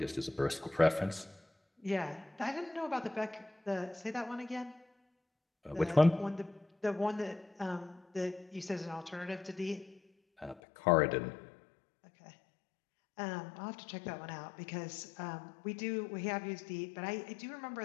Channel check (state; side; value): drops out; right; at 10.6 s